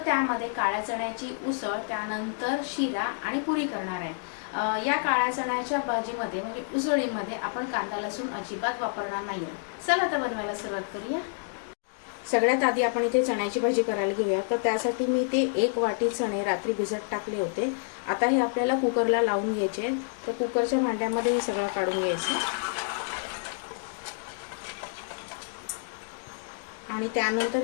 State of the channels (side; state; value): right; silent; digital silence